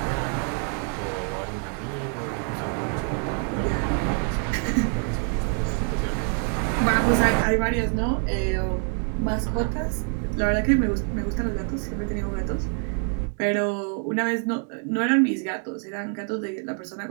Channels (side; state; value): left; quieter; 38.7 dB